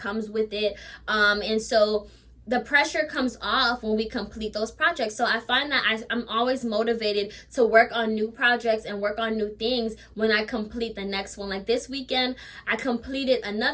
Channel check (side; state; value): both; identical; correlation 1.00